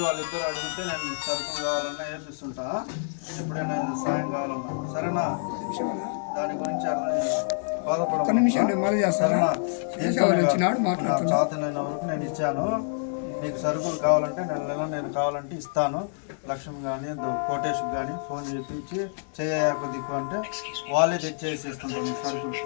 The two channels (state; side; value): silent; right; 60 dB below the other